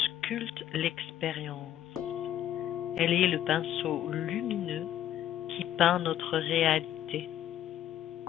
sculpte l'expérience. Elle est le pinceau lumineux qui peint notre réalité.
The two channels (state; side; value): quieter; right; 11.6 dB